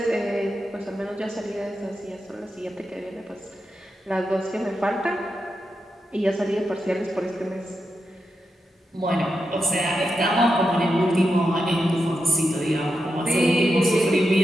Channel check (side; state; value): both; normal; correlation 0.87